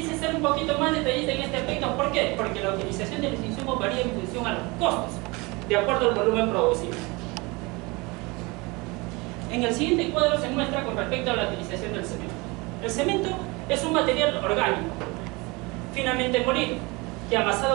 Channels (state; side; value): quieter; left; 25.4 dB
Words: ser un poquito más detallista en este aspecto. ¿Por qué? Porque la utilización de los insumos varía en función a los costos, de acuerdo al volumen producido. En el siguiente cuadro se muestra con respecto a la utilización del cemento. El cemento es un material orgánico, finamente molido, que